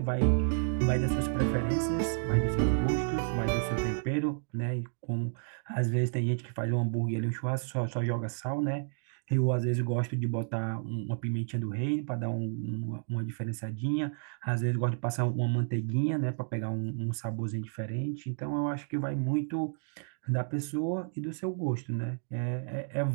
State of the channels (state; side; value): silent; left; digital silence